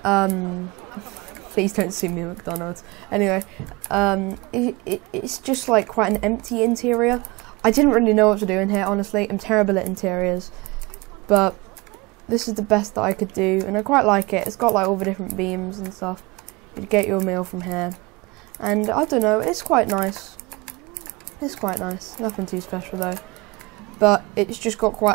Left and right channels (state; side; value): quieter; left; 24.5 dB